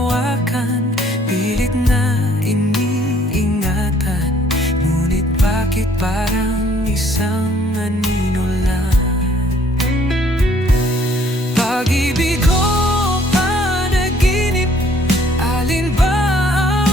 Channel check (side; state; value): both; normal; correlation 0.61